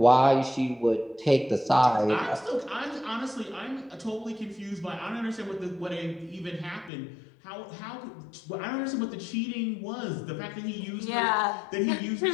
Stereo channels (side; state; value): right; drops out; at 6.9 s